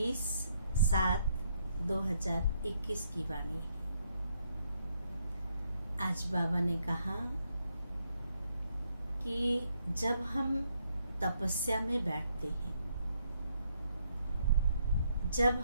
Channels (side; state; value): both; inverted; correlation -0.74